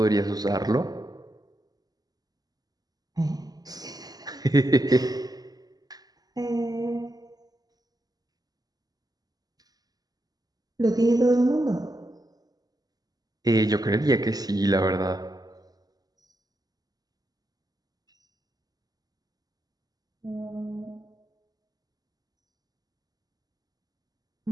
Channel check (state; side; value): late; left; 0.19 ms